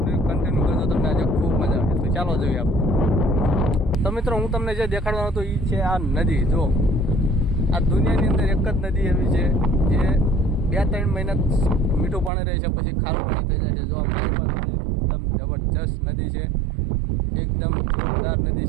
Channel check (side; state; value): left; drops out; at 12.3 s